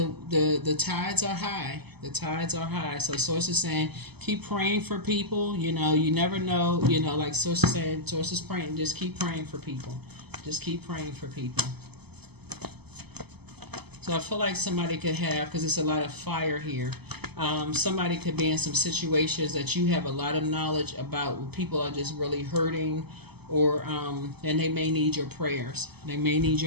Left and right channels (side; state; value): left; late; 0.98 ms